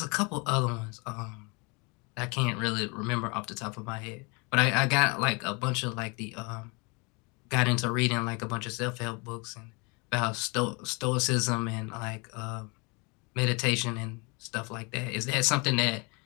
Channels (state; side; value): quieter; right; 30.3 dB